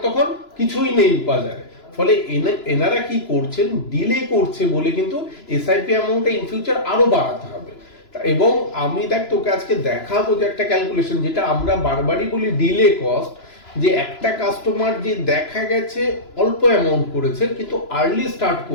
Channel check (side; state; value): right; late; 3.0 ms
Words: তখন কিছুই নেই বাজারে। ফলে এনারা কি করছেন, ডিলে করছে বলে কিন্তু এসআইপি অ্যামাউন্টটা ইন ফিউচার আরো বাড়াতে হবে। এবং আমি দেখ তোকে আজকে দেখাবো যে একটা ক্যালকুলেশন, যেটা আমরা বারবারই বলি ডিলে কস্ট, যে একটা কাস্টমার যে দেখা গেছে অল্প অ্যামাউন্ট করেছে কিন্তু আর্লি স্টার্ট